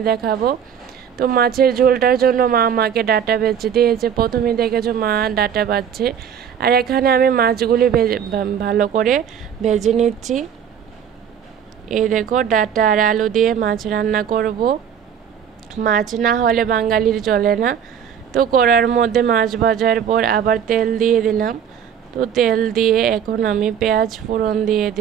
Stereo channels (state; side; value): quieter; left; 8.4 dB